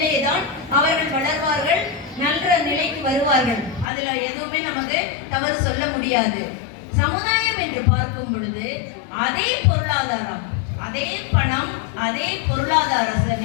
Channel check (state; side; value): drops out; right; at 3.9 s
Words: அவர்கள் வளர்வார்கள், நல்ல நிலைக்கு வருவார்கள். அதுல எதுவுமே நமக்கு தவறு சொல்ல முடியாது. சமுதாயம் என்று பார்க்கும் பொழுது அதே பொருளாதாரம், அதே பணம், அதே பொருளாதார